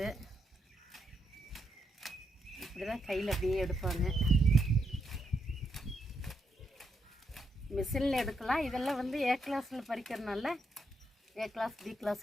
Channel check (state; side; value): normal; both; correlation 0.80